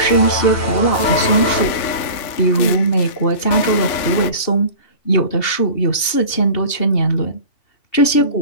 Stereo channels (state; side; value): late; right; 2.7 ms